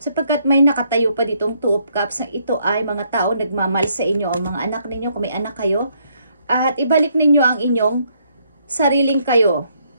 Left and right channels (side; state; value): both; inverted; correlation -0.71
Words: sapagkat may nakatayo pa ditong 2 of Cups na ito ay mga tao nagmamahal sa inyo o mga anak ninyo kung may anak kayo, at ibalik ninyo ang inyong sariling kayo.